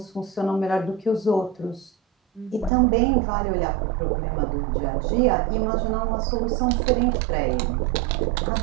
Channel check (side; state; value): left; drops out; at 2.7 s